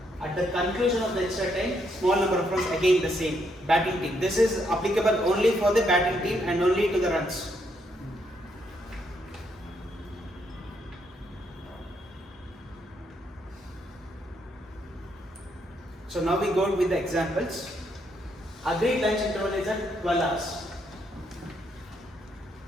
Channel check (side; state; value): both; normal; correlation 0.75